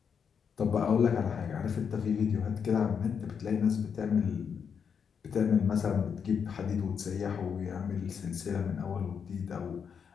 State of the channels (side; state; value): right; quieter; 6.8 dB